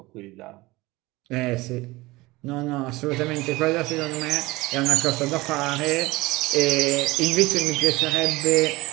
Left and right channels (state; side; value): quieter; left; 20.9 dB